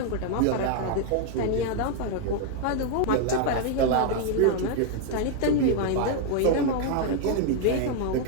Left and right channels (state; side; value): different; both; correlation 0.00